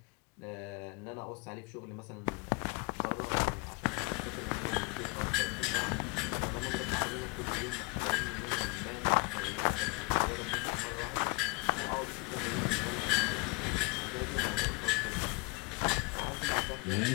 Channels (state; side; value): quieter; right; 29.1 dB